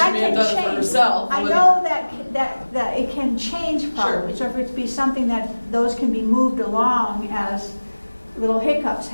may have done it for herself. I know that it can change probably. Sure. So if it be something that those can be moved along as little hiccups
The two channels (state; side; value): inverted; both; correlation -1.00